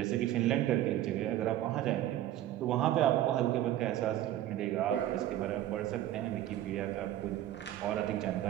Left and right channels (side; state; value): left; quieter; 13.2 dB